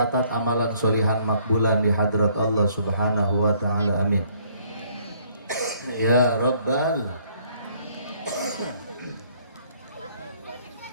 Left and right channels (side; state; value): both; inverted; correlation -0.64